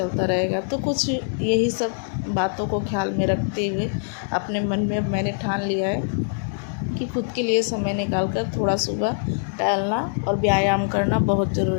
रहेगा। तो कुछ यही सब बातों को ख्याल में रखते हुए अपने मन में मैंने ठान लिया है कि खुद के लिए समय निकाल कर थोड़ा सुबह टहलना और व्यायाम करना बहुत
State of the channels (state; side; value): silent; right; digital silence